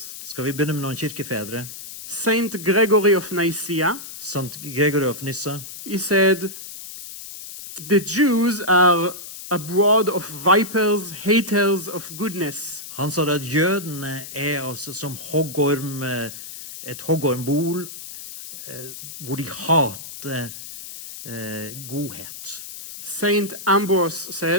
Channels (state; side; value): noise; left; hiss, 12 dB below the sound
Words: Skal vi begynne med noen kirkefedre? Saint Gregory of Nicaea, Sant Gregory of Nyssa, he said, the Jews are a brood of vipers, haters of goodness. han sa at jødene er altså som hoggorm, et hoggormbol, hvor de hater godhet. Saint Ambrose